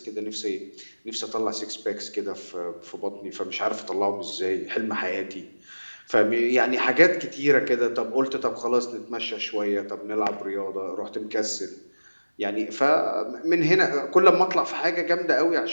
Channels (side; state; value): both; inverted; correlation -1.00